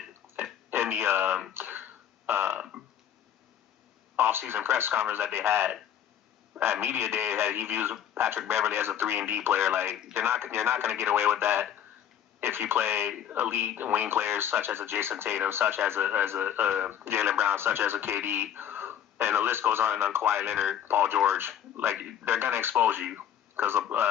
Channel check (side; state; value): right; quieter; 9.7 dB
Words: in the off-season press conference that they had at media day that he views Patrick Beverley as a 3-and-D player. Like you're not going to get away with that if you play elite wing players such as a Jason Tatum, such as a Jaylen Brown, such as a KD, and the list goes on Kawhi Leonard, Paul George. Like they're going to expose you.